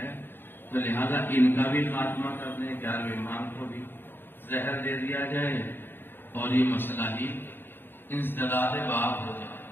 تو لہذا ان کا بھی خاتمہ کر دیں، 11ویں امام کو بھی زہر دے دیا جائے اور یہ مسئلہ ہی انسداد باب ہو جائے،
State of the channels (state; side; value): late; right; 0.10 ms